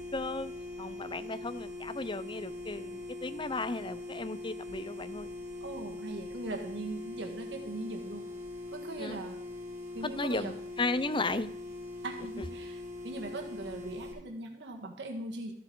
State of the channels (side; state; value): both; normal; correlation 0.38